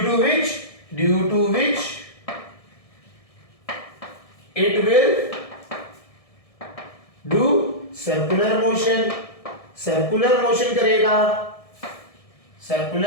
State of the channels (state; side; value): late; right; 1.7 ms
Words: to which it will do circular motion, circular motion करेगा,